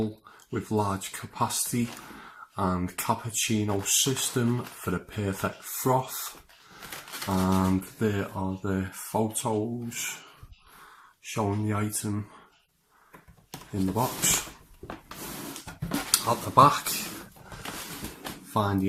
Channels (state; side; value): identical; both; correlation 1.00